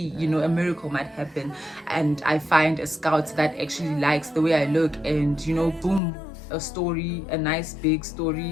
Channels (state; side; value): drops out; right; at 6.0 s